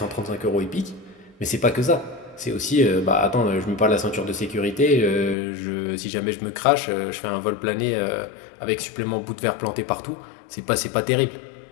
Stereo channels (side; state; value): right; drops out; at 5.4 s